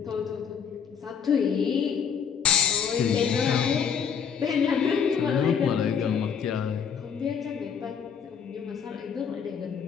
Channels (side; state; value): right; quieter; 7.2 dB